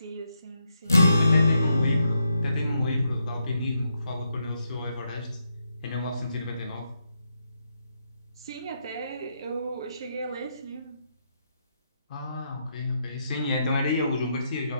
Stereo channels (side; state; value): both; inverted; correlation -0.81